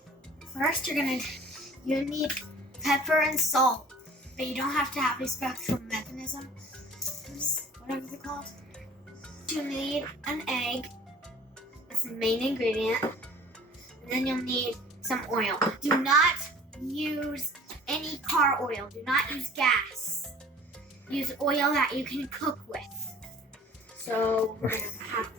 First, you need pepper and salt, but you don't have to have a special mechanism, whatever they're called. You need an egg. That's the main ingredient. And then you'll need some oil. Do not use any car oil. Do not use gas. Use oil that you can cook with. So we're gonna have.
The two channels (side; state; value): both; normal; correlation 0.49